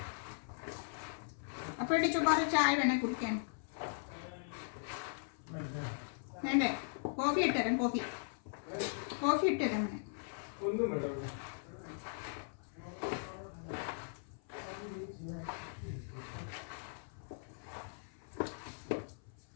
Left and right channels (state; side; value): silent; right; 52 dB below the other